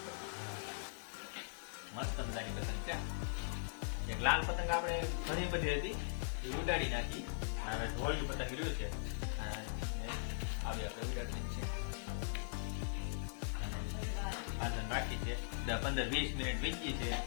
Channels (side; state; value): right; silent; digital silence